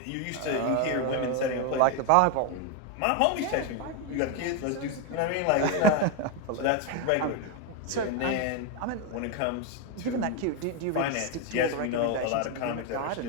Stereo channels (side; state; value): both; different; correlation 0.02